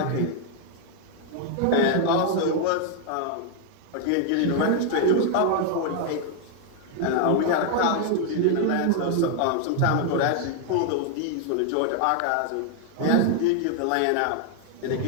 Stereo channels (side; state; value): both; different; correlation 0.00